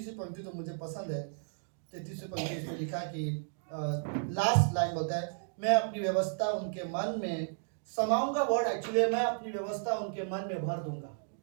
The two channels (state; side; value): silent; left; digital silence